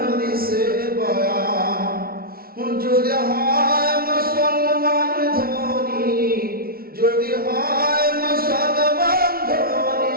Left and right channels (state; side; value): late; left; 0.44 ms